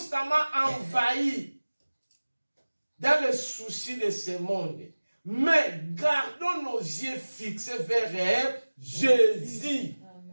envahis dans les soucis de ce monde. Mais gardons nos yeux fixés vers Jésus.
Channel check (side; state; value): both; inverted; correlation -1.00